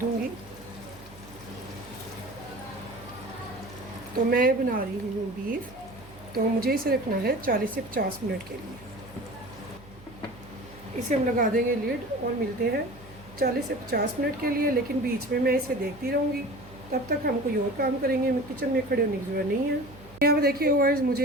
तो मैं बना रही हूँ बीफ, तो मुझे इसे रखना है 40 से 50 मिनट के लिए। इसे हम लगा देंगे लिड और मिलते हैं 40 से 50 मिनट के लिए। लेकिन बीच में मैं इसे देखती रहूँगी, तब तक हम कोई और काम करेंगे, मैं किचन में खड़े होने की ज़रूरत नहीं है। यहाँ पे देखिए व्यूअर्स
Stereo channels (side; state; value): right; noise; hum, 21 dB below the sound